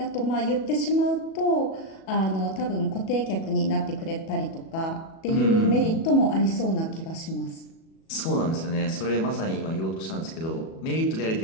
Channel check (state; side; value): late; right; 37 ms